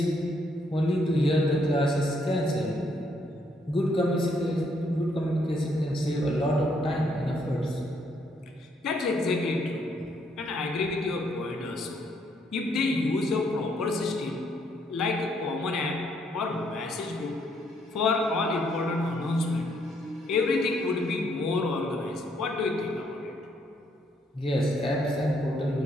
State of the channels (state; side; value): normal; both; correlation 0.71